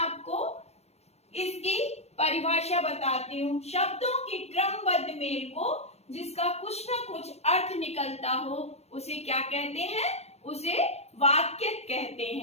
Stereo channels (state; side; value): late; right; 0.31 ms